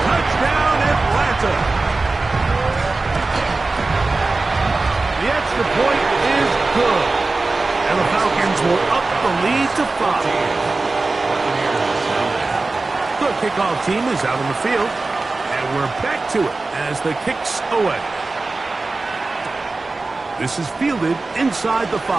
Touchdown, Atlanta. The extra point is good. And the Falcons will up the lead to 5. The kickoff team is out on the field. And we're back to it as the kick's away. This is fielded inside the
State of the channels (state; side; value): quieter; left; 3.5 dB